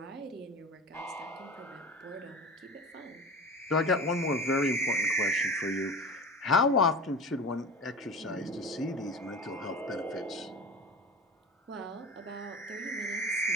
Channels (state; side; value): normal; both; correlation 0.33